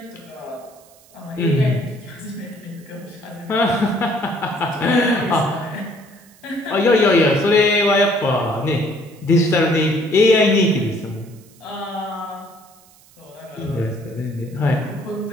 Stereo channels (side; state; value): right; noise; hiss, 27 dB below the sound